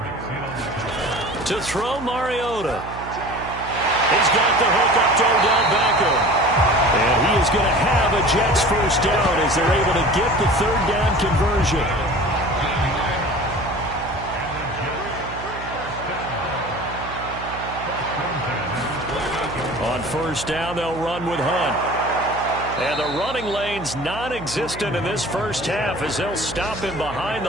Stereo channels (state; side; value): noise; right; hum, 12 dB below the sound